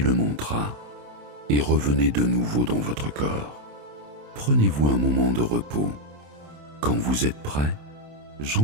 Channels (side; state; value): left; late; 27 ms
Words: mantra et revenez de nouveau dans votre corps. Prenez-vous un moment de repos. Quand vous êtes prêt,